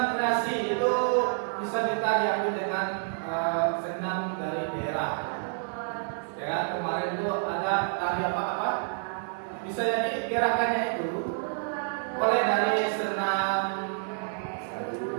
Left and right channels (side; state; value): left; silent; digital silence